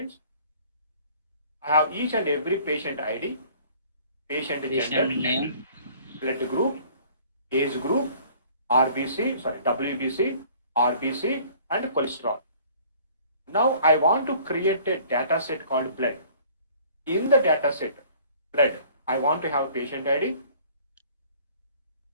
I have each and every patient ID, patient gender, name, blood group, age group, WBC, RBC, and cholesterol. Now I want to create a data set called blood. In the data set, blood, I want to have patient ID,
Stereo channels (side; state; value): both; inverted; correlation -0.53